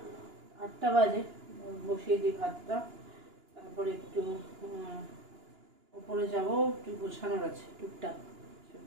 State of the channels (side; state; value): left; late; 2.9 ms